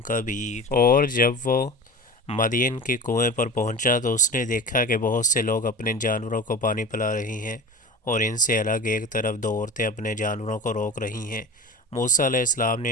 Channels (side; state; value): both; normal; correlation 0.34